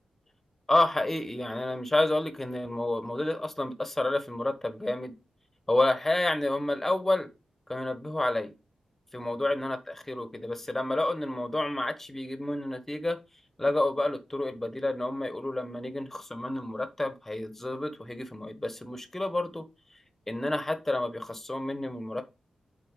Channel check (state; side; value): normal; both; correlation 0.98